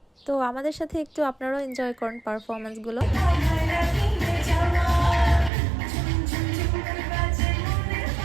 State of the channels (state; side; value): drops out; left; at 5.5 s